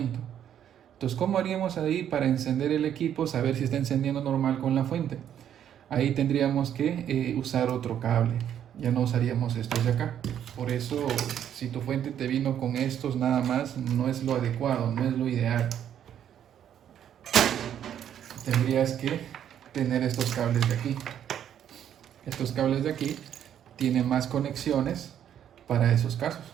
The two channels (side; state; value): left; quieter; 9.8 dB